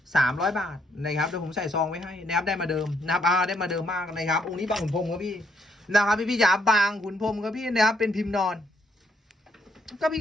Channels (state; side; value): normal; both; correlation 0.72